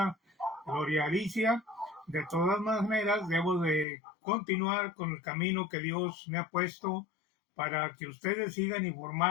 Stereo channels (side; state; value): right; drops out; at 3.9 s